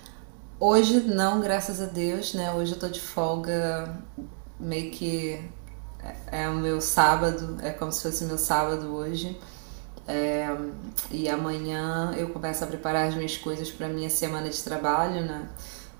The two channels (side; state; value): left; silent; 59 dB below the other